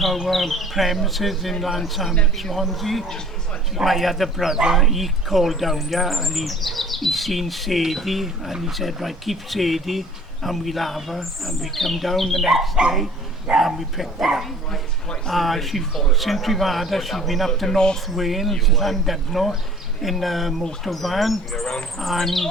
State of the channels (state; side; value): normal; both; correlation 0.50